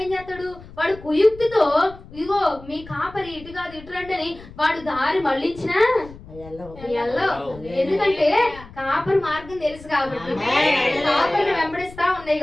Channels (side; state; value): left; noise; rumble, 19 dB below the sound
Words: ఏం చేస్తాడు? వాడు కుయుక్తితో, ఇగో మీ కాపరి ఇటు కాదు ఇటు రండి అని వాడు దారి మళ్ళించినా ఎందుకంటే కాపరి మార్గం తెలుసు కాబట్టి, కాపరిని వెంబడిస్తా ఉన్నాయి